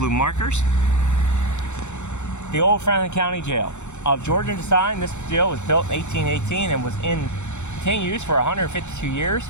markers. The old Franklin County Jail. Of Georgian design, this jail was built in 1818 and was in continued use for 152 years.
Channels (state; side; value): late; right; 0.83 ms